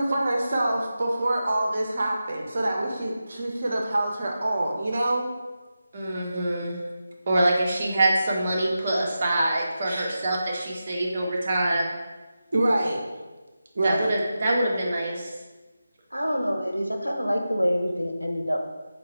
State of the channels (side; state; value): both; inverted; correlation -0.91